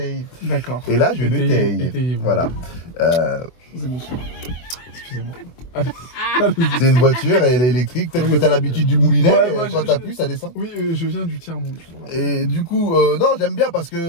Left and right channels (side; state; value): right; late; 24 ms